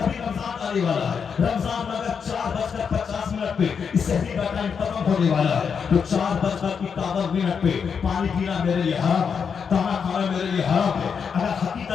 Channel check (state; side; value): quieter; right; 6.5 dB